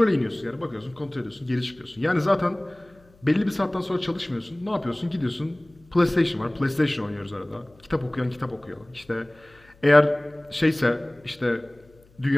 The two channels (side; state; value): left; noise; hum, 29 dB below the sound